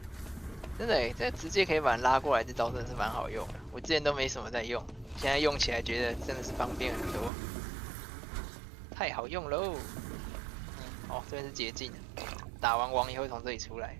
真的诶，这直接可以把人拉过来，这招真的是蛮好用的。我之前都没什么在用，现在用起来觉得真的是方便很多，太好用喽！哦，这边是捷径，打完王也会从这里出来。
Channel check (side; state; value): left; drops out; at 7.3 s